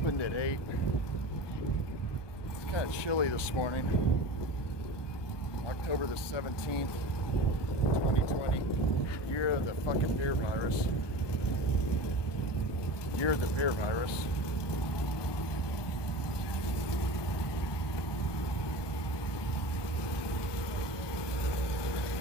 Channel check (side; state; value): right; late; 1.2 ms